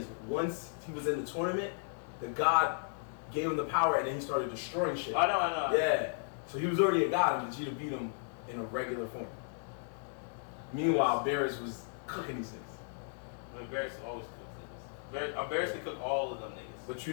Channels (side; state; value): right; silent; digital silence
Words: once he was in the tournament, the god gave him the power, and then he started destroying shit. I know. Yeah. So he was already a god, and Vegeta beat him in a regular form. Meanwhile, Beerus was cooking these niggas. Beerus always cooks niggas. Beerus can cook all of them niggas. But you